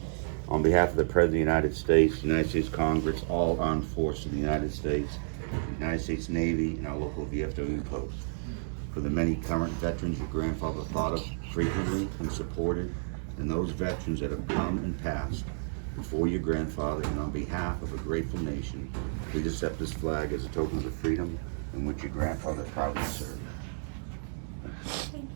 On behalf of the President of the United States, United States Congress, all armed forces of the United States, the United States Navy, and our local VFW post. For the many current veterans your grandfather thought of frequently and supported, and those veterans that have come and passed before your grandfather, and on behalf of a grateful nation, please accept this flag as a token of the freedom in which your grandfather proudly served.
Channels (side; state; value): left; silent; digital silence